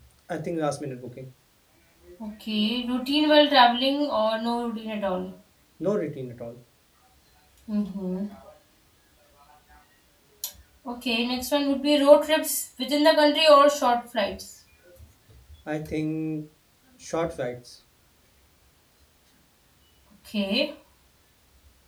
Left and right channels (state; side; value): identical; both; correlation 1.00